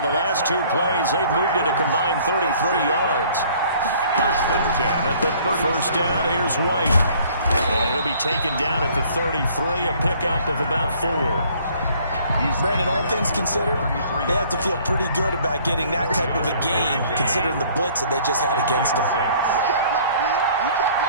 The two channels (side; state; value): both; inverted; correlation -0.57